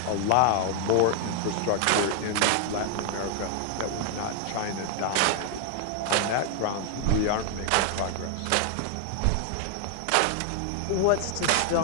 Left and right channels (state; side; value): different; both; correlation 0.00